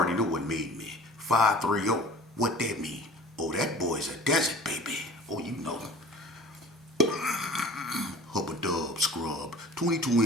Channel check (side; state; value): both; normal; correlation 0.44